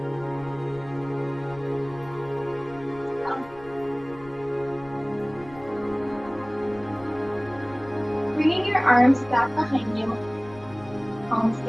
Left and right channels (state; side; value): noise; left; rumble, 21 dB below the sound